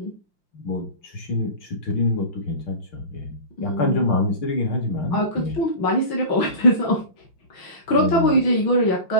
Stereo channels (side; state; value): right; late; 5.7 ms